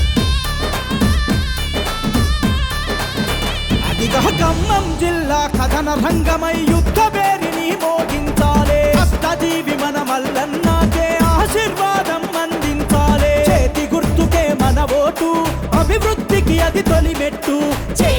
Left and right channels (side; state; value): both; identical; correlation 1.00